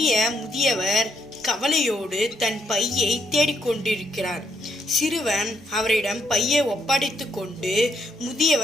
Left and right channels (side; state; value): both; normal; correlation 0.74